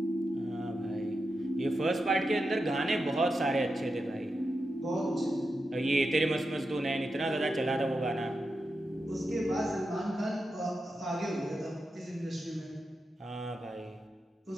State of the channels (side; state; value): both; normal; correlation 0.88